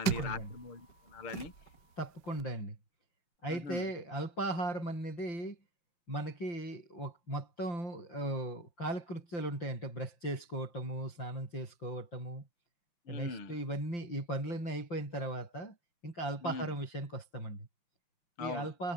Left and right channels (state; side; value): late; right; 5.8 ms